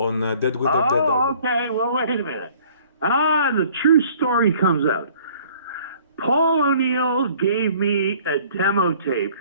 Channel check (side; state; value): both; inverted; correlation -0.55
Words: Dead Winter Dead. Oh, okay. Well, wait a minute. The true story comes out. Paul O'Neill gave me a demo tape